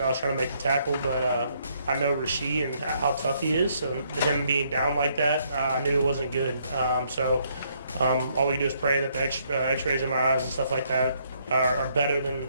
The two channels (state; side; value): inverted; both; correlation -0.70